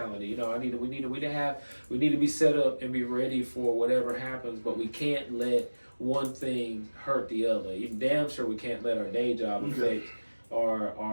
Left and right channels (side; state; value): both; inverted; correlation -1.00